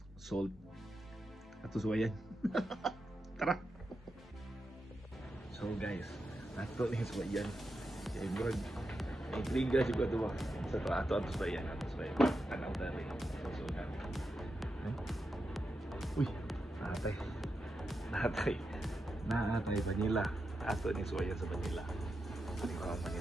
salt. Ato suwayan. Tara. So guys, ato ni suwayan. Kaya murag intriga juga to ba. Sa ato suwayan, Tanaw dali. So na. Uy, Naatay vanilla. Ato ni suwayan sa vanilla.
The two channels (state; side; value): normal; both; correlation 0.87